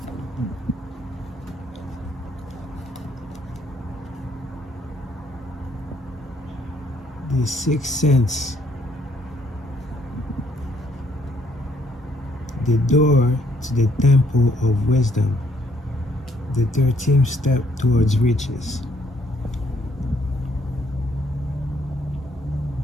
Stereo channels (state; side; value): normal; both; correlation 0.67